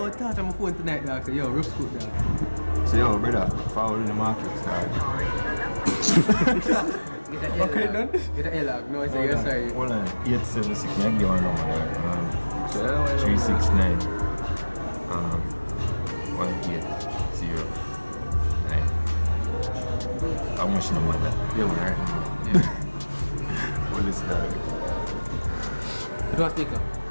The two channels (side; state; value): both; inverted; correlation -1.00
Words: to touch on my phone tonight, dog. Yo, rough scoop, dog. So yo, brother, follow in the market, dog. Okay, done? Get an L-log. No, I say yes, sorry. Hold on, 876, I give one number there. 369 180 9. How much number that? Yeah, man, right? What is that? You want speaker?